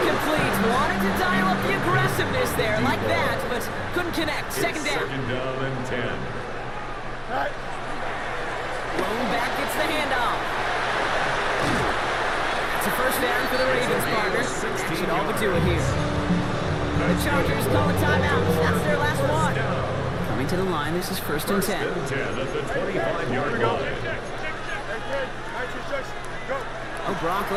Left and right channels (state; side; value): identical; both; correlation 1.00